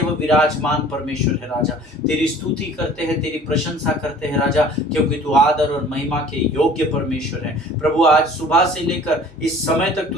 विराजमान परमेश्वर है राजा। तेरी स्तुति करते हैं, तेरी प्रशंसा करते हैं राजा, क्योंकि तू आदर और महिमा के योग्य परमेश्वर है। प्रभु, आज सुबह से लेकर इस समय तक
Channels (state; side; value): normal; both; correlation 0.48